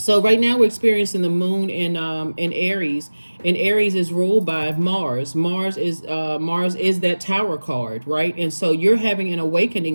right now we're experiencing the moon in Aries, and Aries is ruled by Mars. Mars is that Tower card, right? And so you're having an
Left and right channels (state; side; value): inverted; both; correlation -1.00